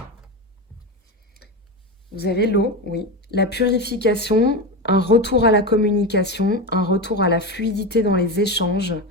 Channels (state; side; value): normal; both; correlation 0.19